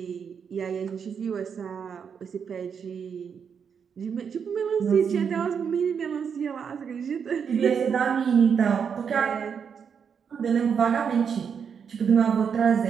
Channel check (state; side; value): quieter; left; 6.9 dB